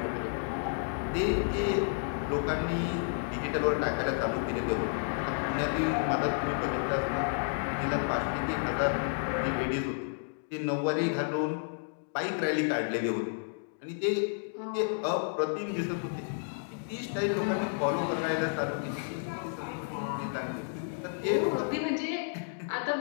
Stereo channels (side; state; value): right; silent; digital silence